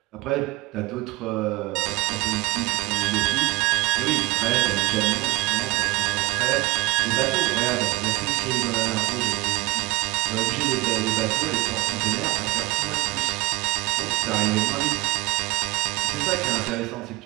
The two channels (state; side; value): quieter; left; 21.3 dB